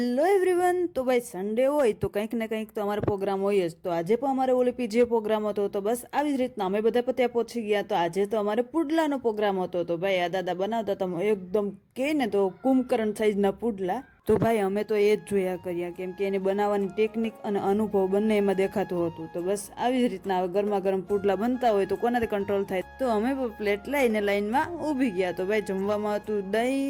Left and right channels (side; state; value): both; identical; correlation 1.00